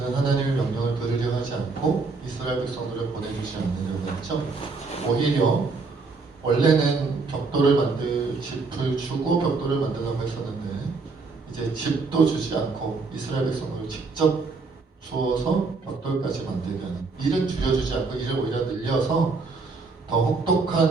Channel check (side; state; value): left; quieter; 4.2 dB